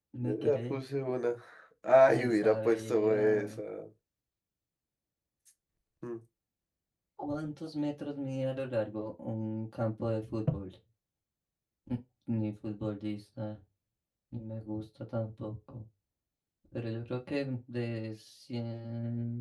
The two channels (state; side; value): identical; both; correlation 1.00